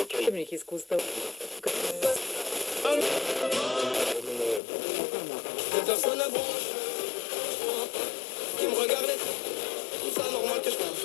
Mais qu'est-ce qu'on se passe? Personne à branche qui me regardait. Tout ça normal que je fasse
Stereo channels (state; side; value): drops out; right; at 4.6 s